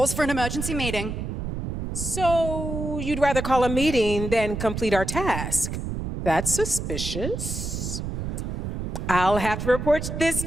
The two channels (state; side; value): noise; right; rumble, 4 dB below the sound